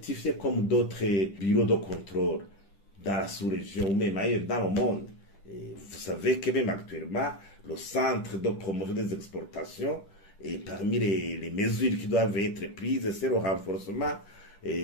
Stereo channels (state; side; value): late; right; 10 ms